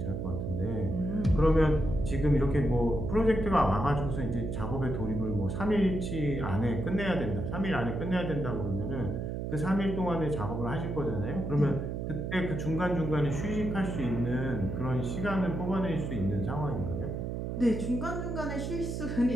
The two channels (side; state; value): right; noise; hum, 3 dB below the sound